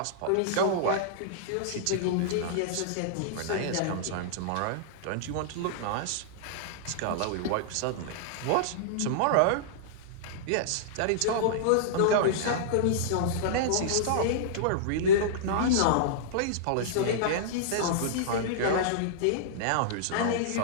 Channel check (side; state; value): both; different; correlation -0.02